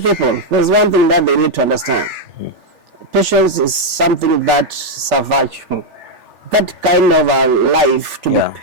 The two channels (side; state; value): left; late; 3.4 ms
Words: people there's one thing that they need to understand. Patience is something that's a virtue. That kind of a life, to be